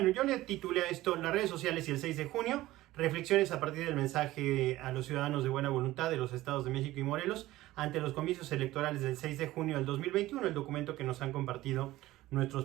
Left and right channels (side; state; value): left; quieter; 16.7 dB